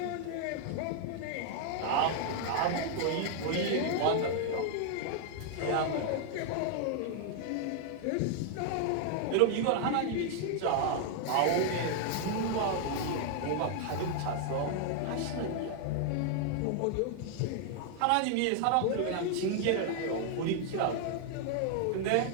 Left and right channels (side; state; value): both; different; correlation 0.00